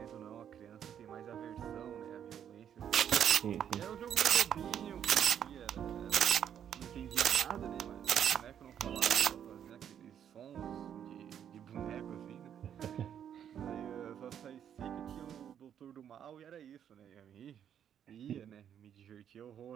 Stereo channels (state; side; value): quieter; left; 9.2 dB